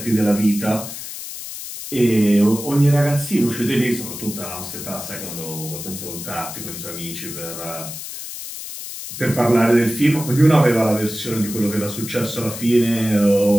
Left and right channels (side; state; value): left; noise; hiss, 10 dB below the sound